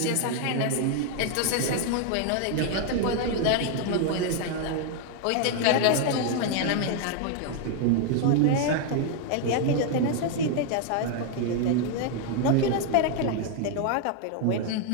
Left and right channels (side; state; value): both; different; correlation 0.00